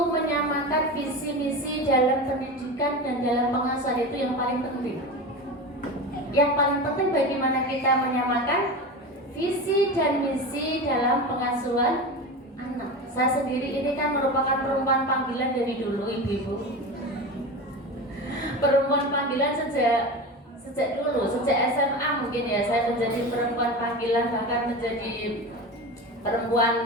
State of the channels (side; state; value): both; normal; correlation 0.26